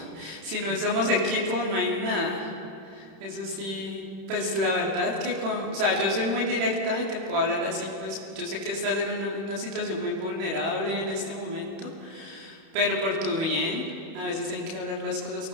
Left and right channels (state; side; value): late; left; 31 ms